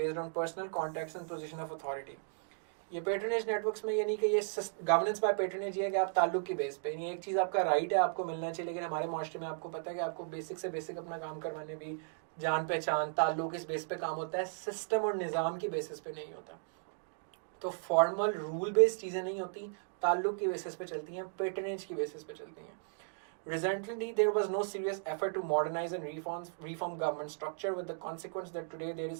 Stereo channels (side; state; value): left; silent; digital silence